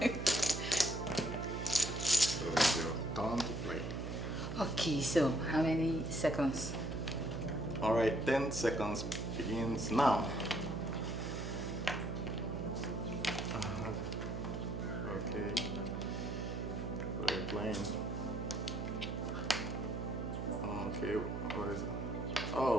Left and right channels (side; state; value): right; noise; hum, 4 dB below the sound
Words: So it's your turn to play. Okay, so how many seconds? Alright, 10 seconds begins now. Okay. What are you playing? Okay, what is it?